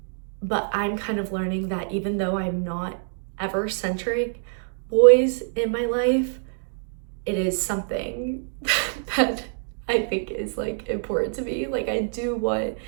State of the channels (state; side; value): silent; left; 61 dB below the other